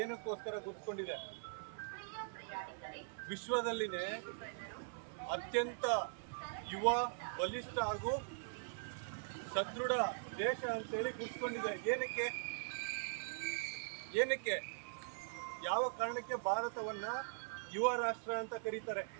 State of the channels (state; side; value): silent; left; digital silence